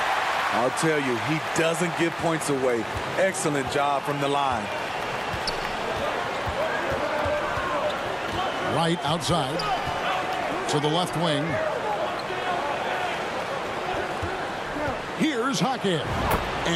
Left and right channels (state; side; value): identical; both; correlation 1.00